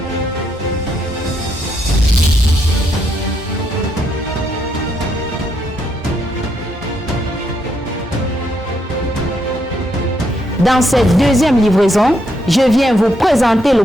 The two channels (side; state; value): both; normal; correlation 0.77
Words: Dans cette deuxième livraison, je viens vous présenter le